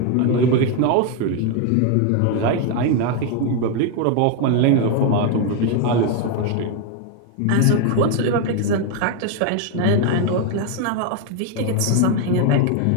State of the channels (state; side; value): different; both; correlation 0.01